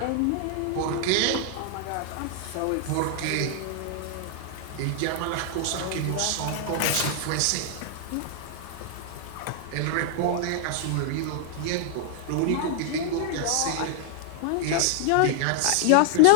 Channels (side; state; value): both; different; correlation -0.01